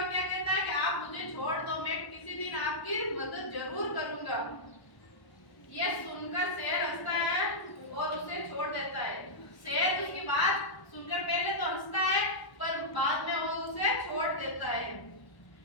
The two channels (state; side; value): late; right; 1.1 ms